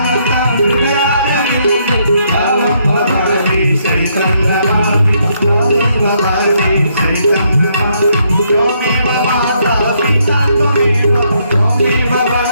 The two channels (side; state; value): both; inverted; correlation -0.73